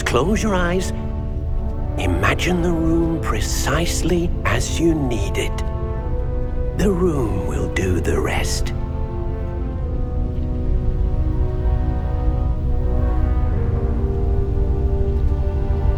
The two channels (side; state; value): both; identical; correlation 1.00